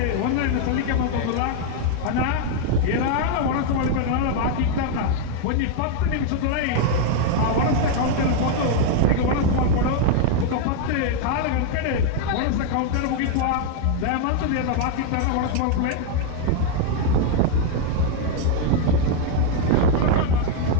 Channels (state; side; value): different; both; correlation 0.00